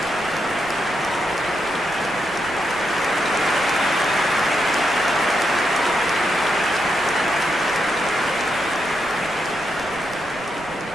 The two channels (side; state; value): right; noise; rumble, 20 dB below the sound